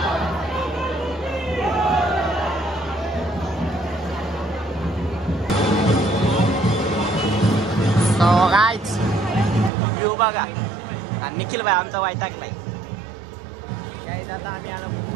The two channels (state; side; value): drops out; left; at 9.7 s